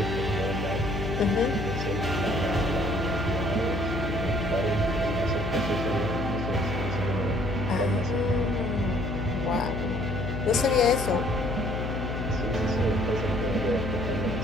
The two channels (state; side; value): noise; left; hum, 3 dB below the sound